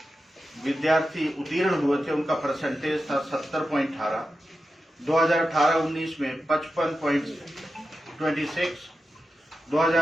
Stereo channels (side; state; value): both; normal; correlation 0.91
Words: विद्यार्थी उत्तीर्ण हुए थे उनका परसेंटेज था 70.18, 2018-19 में 55.26,